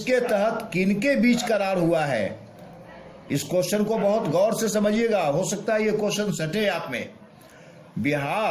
तहत किनके बीच करार हुआ है? इस क्वेश्चन को बहुत गौर से समझिएगा, हो सकता है ये क्वेश्चन सटे आप में।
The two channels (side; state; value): both; identical; correlation 1.00